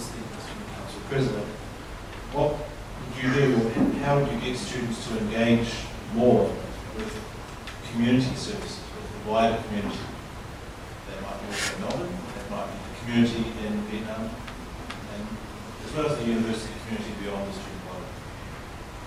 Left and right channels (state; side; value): identical; both; correlation 1.00